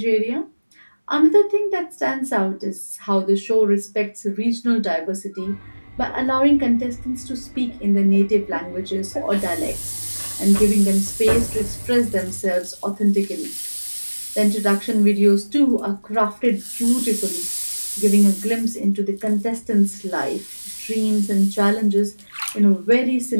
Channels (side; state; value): both; inverted; correlation -1.00